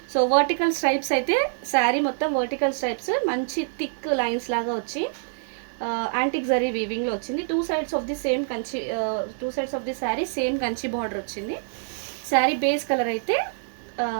సో వర్టికల్ స్ట్రైప్స్ అయితే శారీ మొత్తం వర్టికల్ స్ట్రైప్స్ మంచి థిక్ లైన్స్ లాగా వచ్చి యాంటిక్ జరీ వీవింగ్లో వచ్చింది. Two sides of the sari same Kanchi border వచ్చింది. శారీ బేస్ కలర్ అయితే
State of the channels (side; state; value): left; silent; digital silence